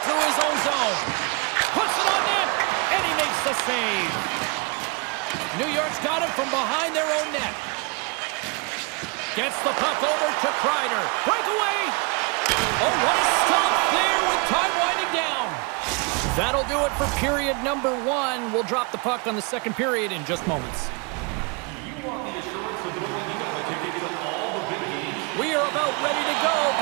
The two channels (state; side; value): quieter; left; 31.3 dB